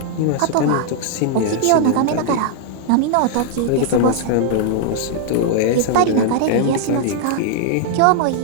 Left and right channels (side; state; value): both; different; correlation 0.00